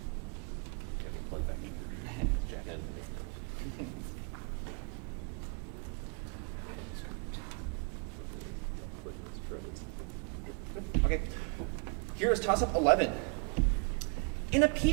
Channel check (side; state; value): left; quieter; 35.5 dB